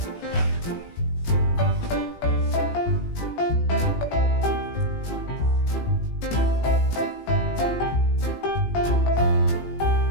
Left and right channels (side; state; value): right; late; 18 ms